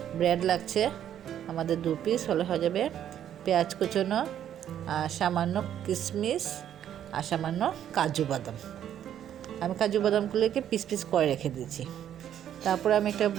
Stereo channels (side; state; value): left; quieter; 10.3 dB